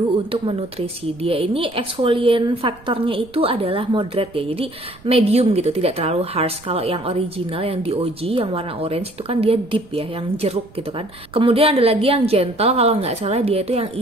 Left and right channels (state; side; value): noise; right; rumble, 24 dB below the sound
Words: untuk menutrisi. Dia ini exfoliant faktornya itu adalah moderate ya. Jadi medium gitu, tidak terlalu harsh. Kalau yang original yang di OG yang warna orange itu kan dia deep ya, yang jeruk gitu kan. Kemudian ada lagi yang gentle, kalau nggak salah dia itu yang